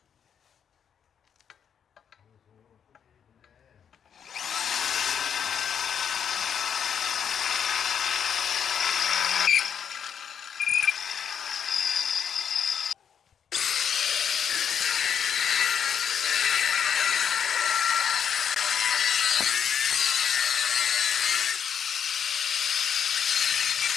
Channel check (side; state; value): right; quieter; 7.9 dB